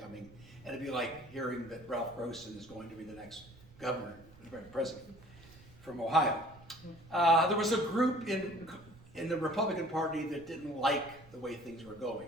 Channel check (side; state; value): right; noise; rumble, 22 dB below the sound